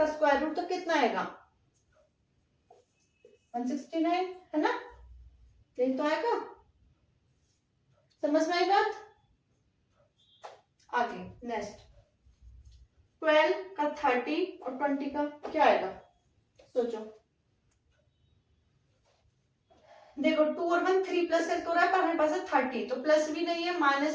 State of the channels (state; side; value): identical; both; correlation 1.00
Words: स्क्वायर रूट तो कितना आएगा 169, है ना। यही तो आएगा, समझ में आई बात। आगे नेक्स्ट, 12 का 30 और 20 का क्या आएगा, सोचो। देखो 2 और 1 3 प्लस करके हो रहा है, पर हमारे पास है 30, तो प्लस भी नहीं है,